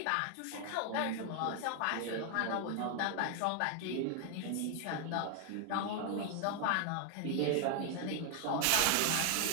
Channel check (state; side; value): different; both; correlation 0.00